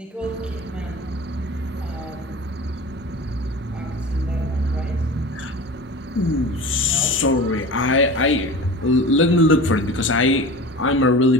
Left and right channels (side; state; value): both; normal; correlation 0.35